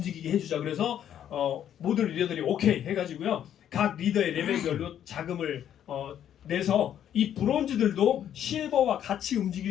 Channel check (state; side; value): quieter; right; 10.2 dB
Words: 해주자. 그래서 모든 리더들이 오케이 해가지고요. 각 리더의 레벨별로 자금을 내서 이 브론즈들도 실버와 같이